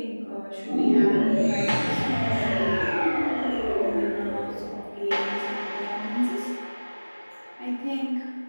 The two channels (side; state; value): both; inverted; correlation -1.00